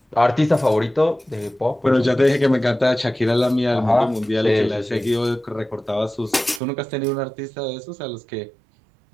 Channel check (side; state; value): left; drops out; at 6.6 s